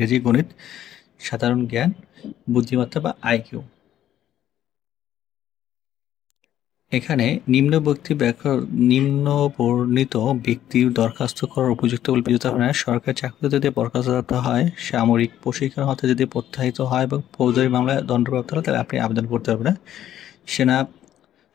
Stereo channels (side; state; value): right; quieter; 11.6 dB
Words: গণিত, সাধারণ জ্ঞান, বুদ্ধিমত্তা বা আইকিউ। এখানে নিম্ন বর্ণিত ব্যক্তির দরখাস্ত করার উপযুক্ত বলে বিবেচিত হয় না। সরকারি চাকরিতে যদি বরখাস্ত হয়, সামরিক প্রশিক্ষণ হতে যদি প্রত্যাহিত হয় এবং ফৌজদারি মামলায় দণ্ডপ্রাপ্ত হয় তাহলে আপনি আবেদন করতে পারবেন না। সেনা